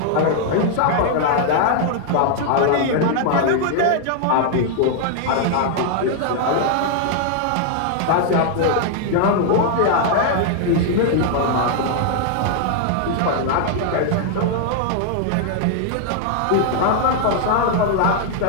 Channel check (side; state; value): both; different; correlation 0.00